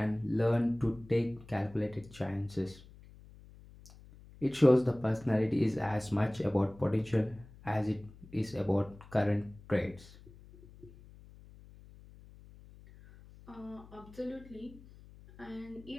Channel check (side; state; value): left; noise; hum, 21 dB below the sound